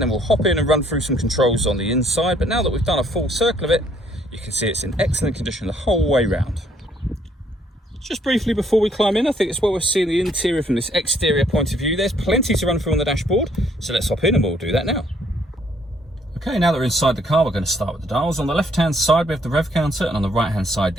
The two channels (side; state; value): both; normal; correlation 0.66